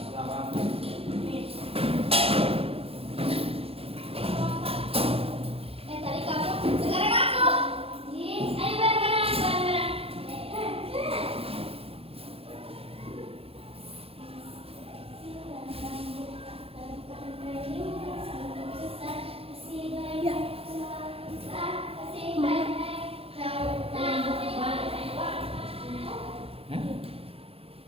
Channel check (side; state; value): left; late; 0.28 ms